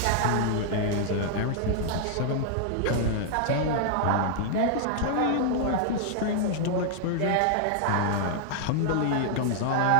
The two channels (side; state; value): both; different; correlation -0.01